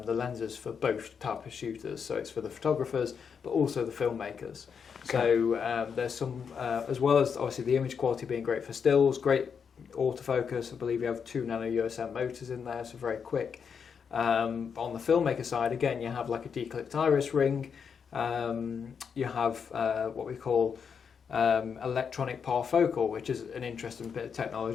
the lenses for both type of shooters. So it's for the photographers, but also the filmmakers. So there's some, as well as obviously the image quality being great for stills, great autofocus. I believe you have 2 nano USM motors in there, so very quick. On the filmmaker side, again, you have like a declicked iris ring. You have what we call electronic parfocal, which is an interesting bit of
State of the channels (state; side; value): quieter; right; 6.6 dB